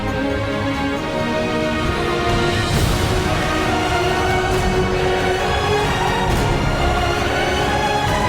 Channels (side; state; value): both; identical; correlation 1.00